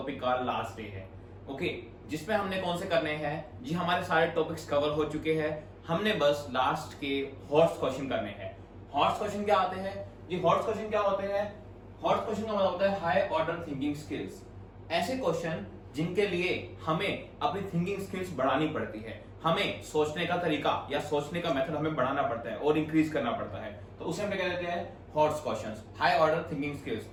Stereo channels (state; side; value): identical; both; correlation 1.00